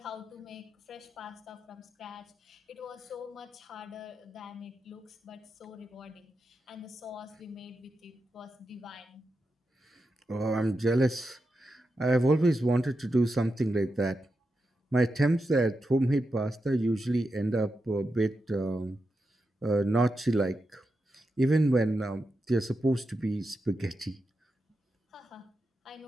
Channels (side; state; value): both; normal; correlation 0.88